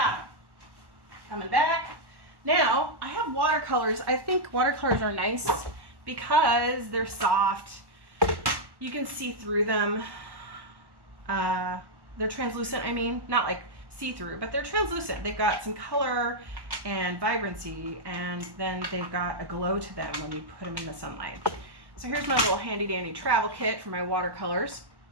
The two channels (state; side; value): late; left; 1.1 ms